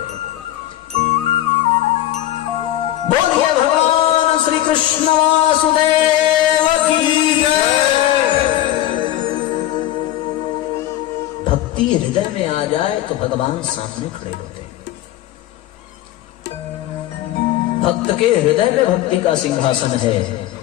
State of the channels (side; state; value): right; quieter; 13.8 dB